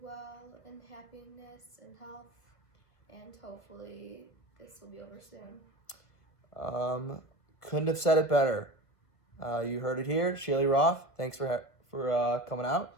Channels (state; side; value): late; right; 1.6 ms